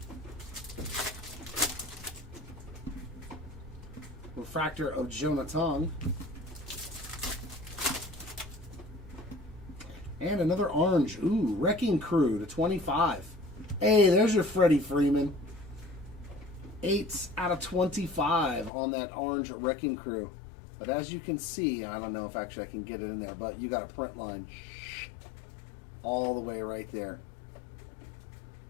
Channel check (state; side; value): drops out; right; at 18.7 s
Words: Refractor of Jonathan. And another orange. Ooh, Wrecking Crew to 25. Hey, there's your Freddie Freeman. 8 out of 25 on that orange Wrecking Crew. But as you can see, I don't know if actually I can get it in there, but you got a print line all the way right there.